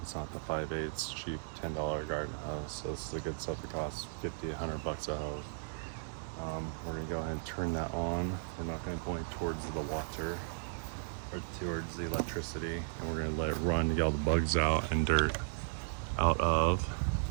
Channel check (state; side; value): silent; left; digital silence